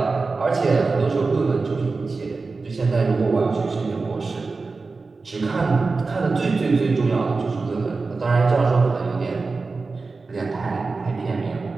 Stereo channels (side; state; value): left; quieter; 4.0 dB